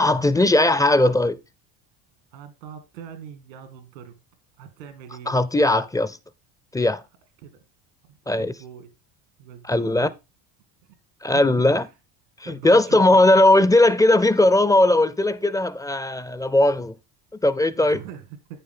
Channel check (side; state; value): both; normal; correlation 0.78